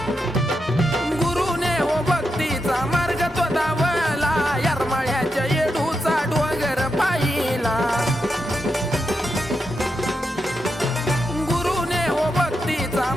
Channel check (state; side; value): normal; both; correlation 0.85